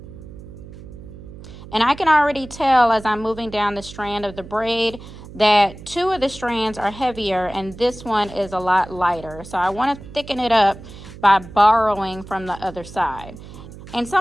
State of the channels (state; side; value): noise; right; hum, 16 dB below the sound